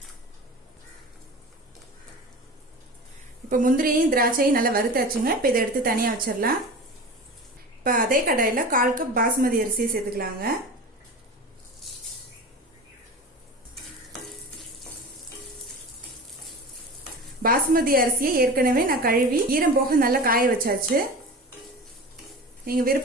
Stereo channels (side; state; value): both; normal; correlation 0.33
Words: இப்போ முந்திரியும் திராட்சையும் நல்லா வறுத்தாச்சுங்க. இப்போ இதை எடுத்து தனியாக வச்சிடலாம். இப்போ அதே கடாயில் 1/4 கப் பாஸ்மதி அரிசியை சேர்த்துக்கலாங்க. பாஸ்மதி அரிசியை ஏற்கனவே நான் கழுவி ஈரம் போக நல்லா காய வச்சாச்சு. நீங்கள்